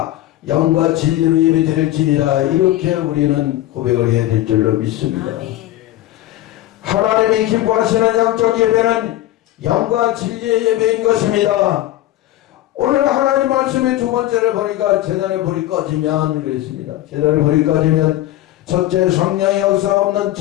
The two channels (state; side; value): quieter; right; 14.8 dB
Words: 영과 진리로 예배드릴지니라. 이렇게 우리는 고백을 해야 될 줄로 믿습니다. 하나님이 기뻐하시는 영적 예배는 영과 진리의 예배인 것입니다. 오늘 하나님 말씀의 두 번째를 보니까 재단의 불이 꺼지면 그랬습니다. 재단의 불이 꺼지면, 첫째, 성령의 역사 없는